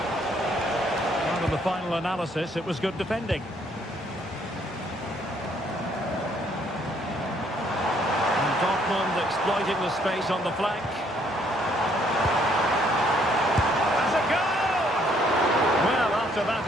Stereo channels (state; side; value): normal; both; correlation 0.66